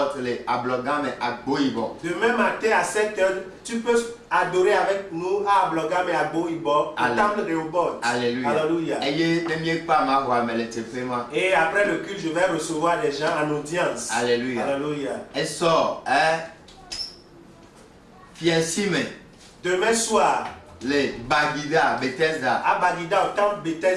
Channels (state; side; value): identical; both; correlation 1.00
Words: Demain matin à 7h, tu peux adorer avec nous à Ablogam et à Boibo, au temple Rehoboth. Alléluia. Alléluia. Et après le culte, je vais recevoir des gens en audience. Alléluia. Alléluia. Demain soir, les Bagida, Bethesda. À Bagida, au temple